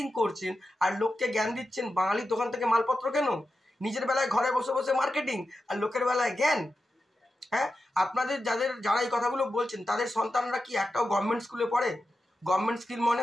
করছেন আর লোককে জ্ঞান দিচ্ছেন বাঙালির দোকান থেকে মালপত্র কেন। নিজের বেলায় ঘরে বসে বসে মার্কেটিং, আর লোকের বেলায় জ্ঞান। হ্যাঁ, আপনাদের যারা এই কথাগুলো বলছেন তাদের সন্তানরা কি একটাও গভর্নমেন্ট স্কুলে পড়ে? গভর্নমেন্ট স্কুল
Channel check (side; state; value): both; normal; correlation 0.91